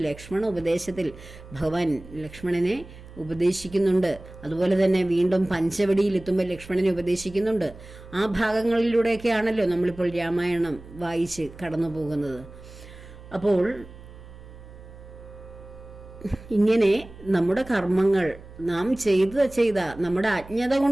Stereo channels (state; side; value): noise; right; hum, 18 dB below the sound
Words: ലക്ഷ്മണ ഉപദേശത്തിൽ ഭഗവാൻ ലക്ഷ്മണനെ ഉപദേശിക്കുന്നുണ്ട്. അതുപോലെ തന്നെ വീണ്ടും പഞ്ചവടിയിലെത്തുമ്പോൾ ലക്ഷ്മണനെ ഉപദേശിക്കുന്നുണ്ട്. ആ ഭാഗങ്ങളിലൂടെയൊക്കെയാണല്ലോ നമ്മളിപ്പോൾ രാമായണം വായിച്ച് കടന്നു പോകുന്നത്. അപ്പോൾ ഇങ്ങനെ നമ്മുടെ കർമ്മങ്ങൾ നാം ചെയ്ത നമ്മുടെ അജ്ഞത